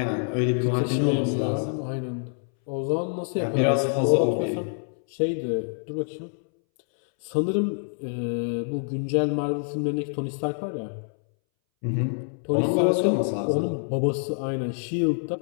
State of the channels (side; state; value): right; silent; 61 dB below the other